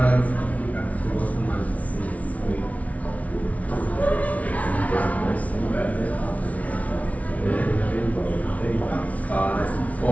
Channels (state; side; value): late; right; 0.068 ms